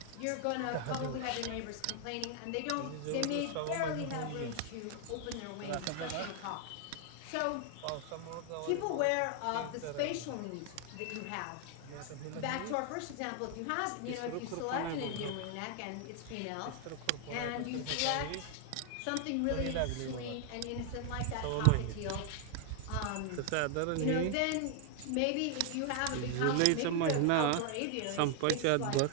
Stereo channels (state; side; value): different; both; correlation 0.00